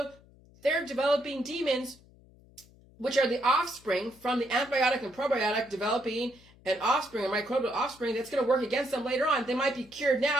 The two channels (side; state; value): left; noise; hum, 26 dB below the sound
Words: they're developing demons, which are the offspring from the antibiotic and probiotic, developing an offspring, a microbial offspring that's going to work against them later on. They might be cured